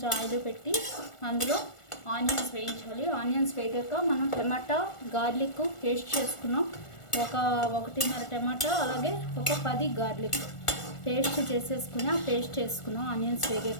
ఆయిల్ పెట్టి అందులో ఆనియన్స్ వేయించాలి. ఆనియన్స్ వేగాక మనం టమాటా గార్లిక్ పేస్ట్ చేసుకున్నాం. 1.5 టమాటా అలాగే 10 గార్లిక్ పేస్ట్ చేసేసుకుని ఆ పేస్ట్ వేసుకున్నాం ఆనియన్స్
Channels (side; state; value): right; late; 1.4 ms